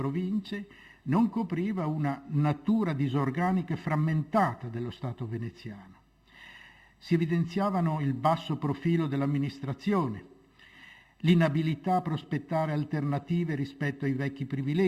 non copriva una natura disorganica e frammentata dello Stato veneziano. Si evidenziavano il basso profilo dell'amministrazione, l'inabilità a prospettare alternative rispetto ai vecchi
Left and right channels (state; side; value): identical; both; correlation 1.00